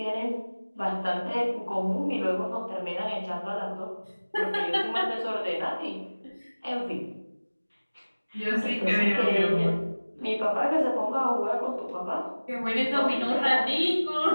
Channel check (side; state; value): both; inverted; correlation -1.00